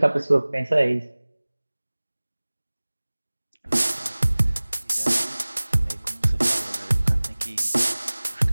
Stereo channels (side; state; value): both; inverted; correlation -1.00